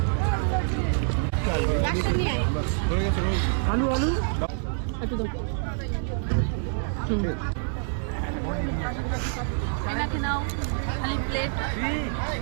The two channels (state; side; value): silent; left; digital silence